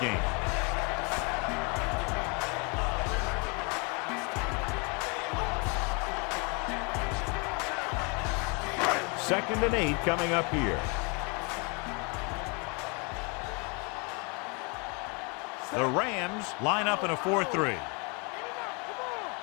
gain. Second and 8 coming up here. The Rams line up in a 4-3.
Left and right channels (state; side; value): quieter; right; 32.2 dB